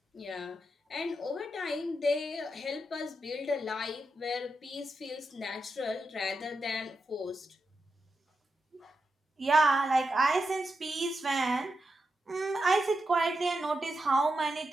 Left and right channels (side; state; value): both; normal; correlation 0.87